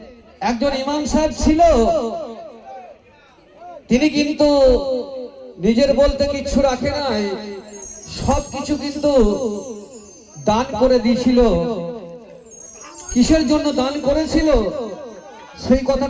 একজন ইমাম সাহেব ছিল, তিনি কিন্তু নিজের বলতে কিছু রাখে নাই, সবকিছু কিন্তু দান করে দিয়েছিল। কিসের জন্য দান করেছিল সেই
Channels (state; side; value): identical; both; correlation 1.00